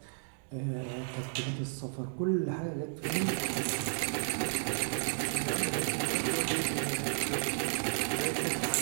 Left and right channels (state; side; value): silent; left; digital silence